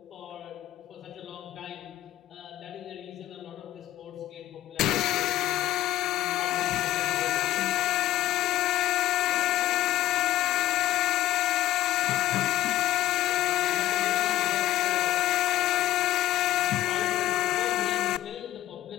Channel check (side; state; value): right; quieter; 14.5 dB